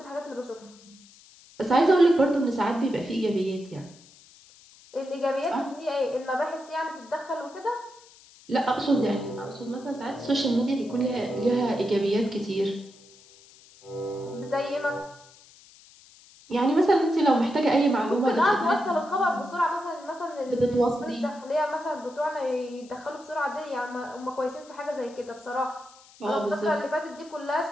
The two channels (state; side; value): noise; left; hiss, 24 dB below the sound